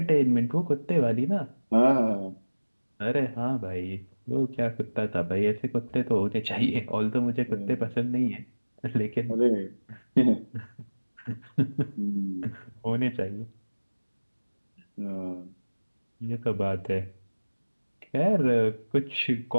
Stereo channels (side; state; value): both; inverted; correlation -1.00